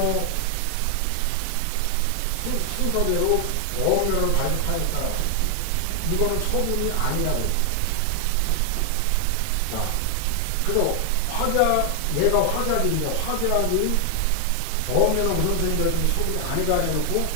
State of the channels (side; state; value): both; different; correlation 0.00